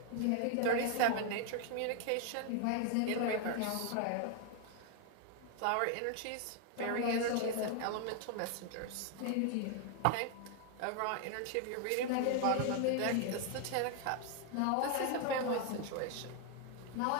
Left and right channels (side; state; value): both; different; correlation 0.00